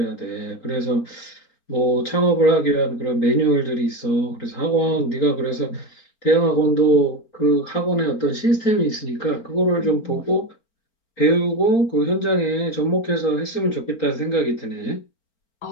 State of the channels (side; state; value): right; late; 4.4 ms